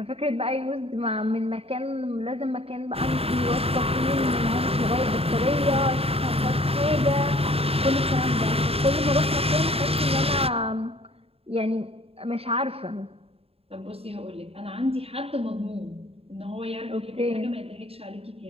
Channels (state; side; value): late; left; 0.28 ms